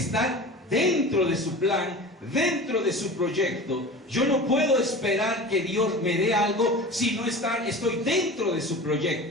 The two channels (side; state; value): both; normal; correlation 0.35